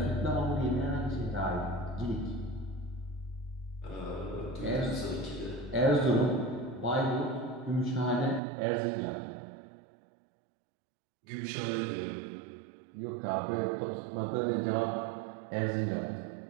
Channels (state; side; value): drops out; left; at 8.4 s